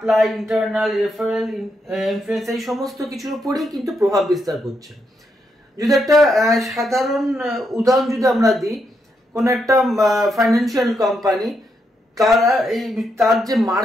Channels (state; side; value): normal; both; correlation 0.80